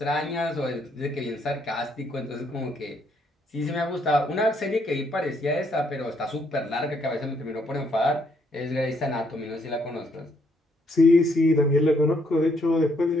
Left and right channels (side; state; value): both; normal; correlation 0.71